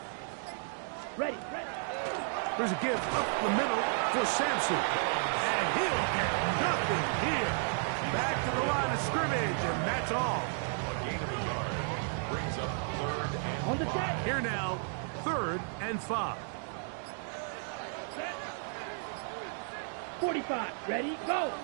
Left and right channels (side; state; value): left; silent; 56 dB below the other